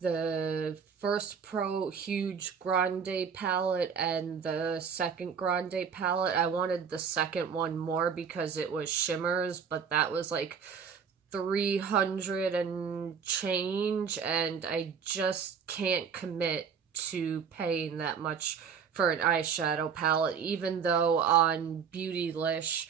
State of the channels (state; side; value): quieter; left; 6.7 dB